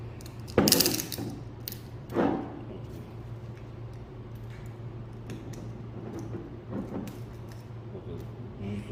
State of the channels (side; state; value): both; identical; correlation 1.00